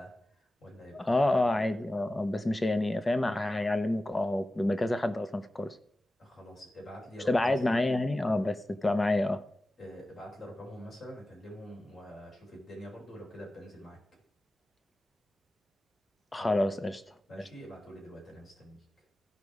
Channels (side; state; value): both; normal; correlation 0.95